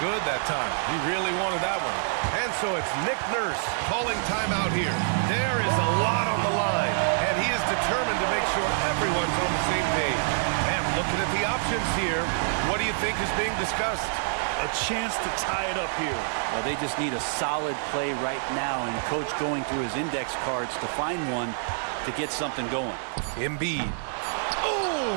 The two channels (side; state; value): left; silent; digital silence